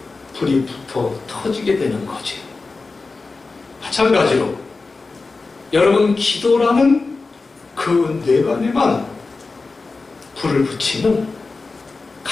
불이 붙어 터지게 되는 거지. 마찬가지로 여러분, 기도라는 그 뇌관에만 불을 붙이면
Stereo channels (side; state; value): right; quieter; 3.9 dB